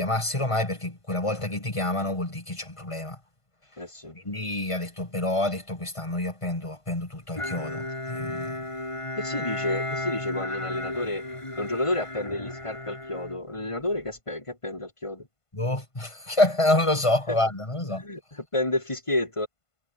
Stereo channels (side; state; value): right; late; 1.5 ms